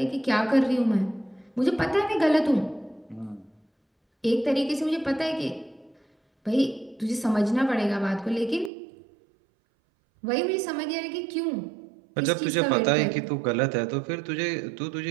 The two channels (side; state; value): left; drops out; at 8.7 s